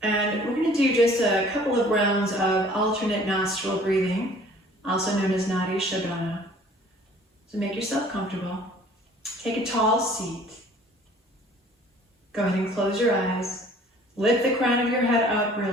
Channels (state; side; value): normal; both; correlation 0.52